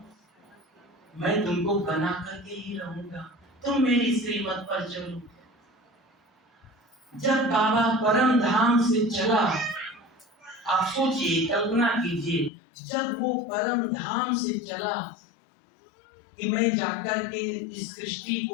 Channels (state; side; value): drops out; right; at 12.5 s